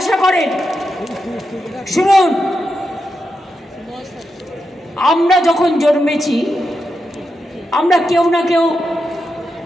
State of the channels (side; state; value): both; normal; correlation 0.87